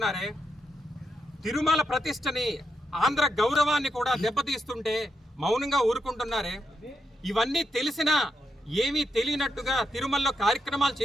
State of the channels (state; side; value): normal; both; correlation 0.83